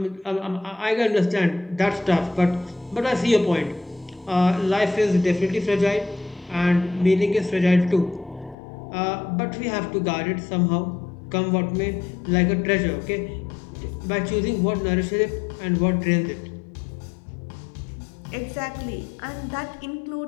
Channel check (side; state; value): right; drops out; at 8.6 s